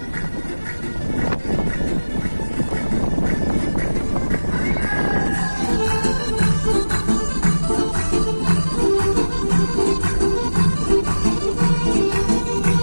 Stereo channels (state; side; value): inverted; both; correlation -1.00